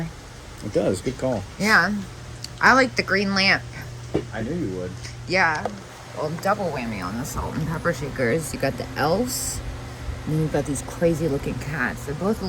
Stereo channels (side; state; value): both; identical; correlation 1.00